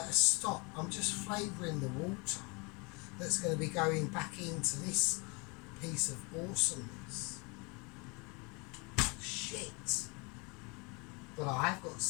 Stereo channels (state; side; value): quieter; right; 29.7 dB